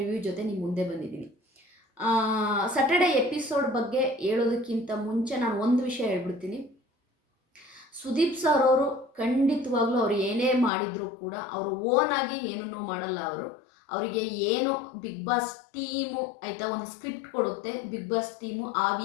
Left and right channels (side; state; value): right; drops out; at 10.7 s